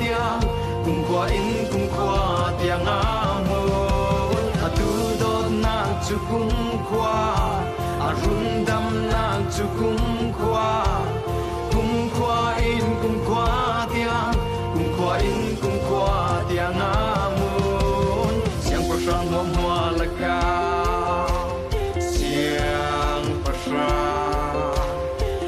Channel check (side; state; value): both; identical; correlation 1.00